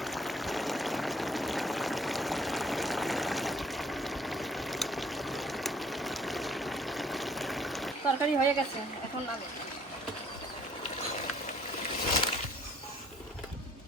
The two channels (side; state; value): both; normal; correlation 0.58